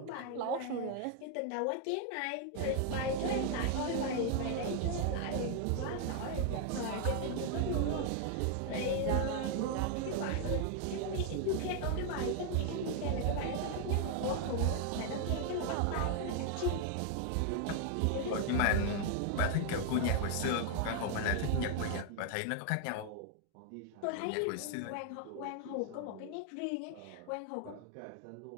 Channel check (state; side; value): different; both; correlation 0.00